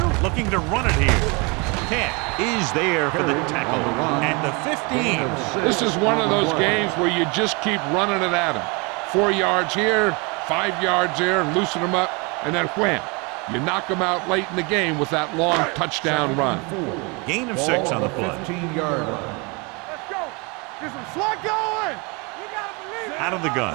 Looking to run it here. Cat is there for the tackle at the 15. This is one of those games where you just keep running it at them. 4 yards here, 5 yards there, and loosen them up, and then wham. You knock them out late in the game with that long touchdown run. Gain of 6 on the play. 15-yard line. Let's go. Get some slot going. You gotta believe it. Out of the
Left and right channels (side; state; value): left; quieter; 29.6 dB